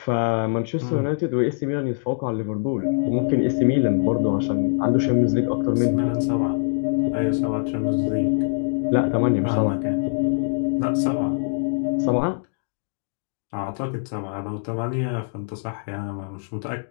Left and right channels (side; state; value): right; silent; digital silence